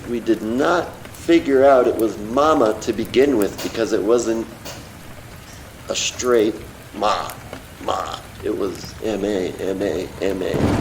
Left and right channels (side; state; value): both; identical; correlation 1.00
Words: we did not figure out it was mama to begin with because it wasn't a straight ma. It was M-A, M-A, M-A.